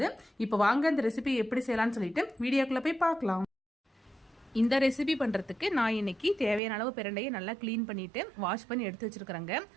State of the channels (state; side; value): drops out; left; at 6.6 s